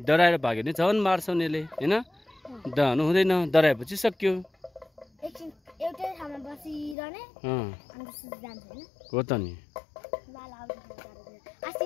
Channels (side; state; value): right; drops out; at 7.0 s